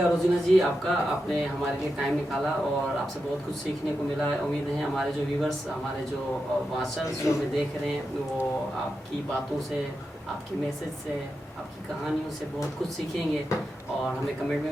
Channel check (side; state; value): both; normal; correlation 0.88